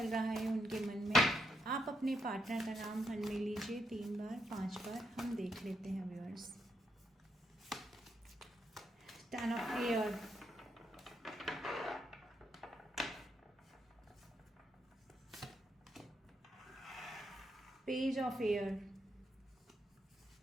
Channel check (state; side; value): normal; both; correlation 0.80